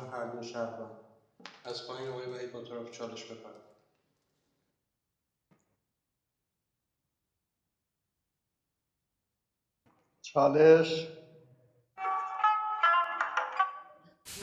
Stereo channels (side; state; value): both; identical; correlation 1.00